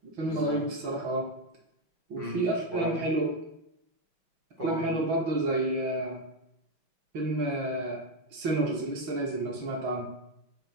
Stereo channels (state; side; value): late; left; 6.0 ms